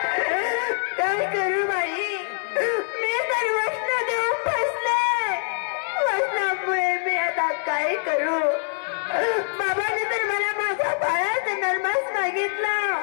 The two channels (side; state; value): right; silent; digital silence